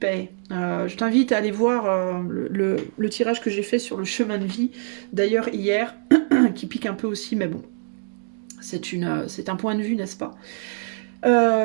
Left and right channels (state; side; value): silent; left; digital silence